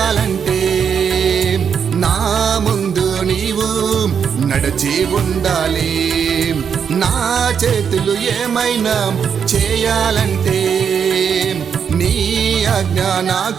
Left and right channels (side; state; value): left; quieter; 7.2 dB